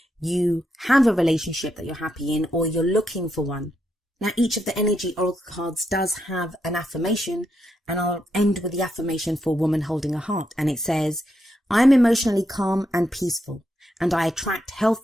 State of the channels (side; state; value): both; normal; correlation 0.81